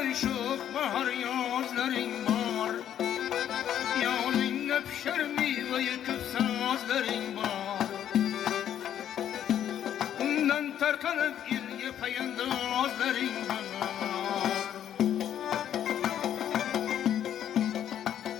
şok bahar yazların var. Yalınla pişer meyve yıkıp sazların var. Ondan tarkanıp ilge payandazların var.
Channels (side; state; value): right; quieter; 10.3 dB